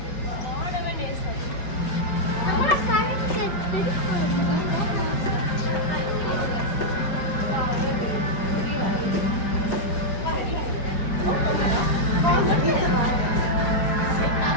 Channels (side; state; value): right; late; 5.5 ms